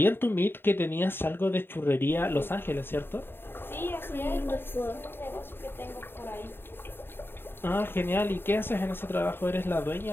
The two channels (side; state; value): right; late; 0.10 ms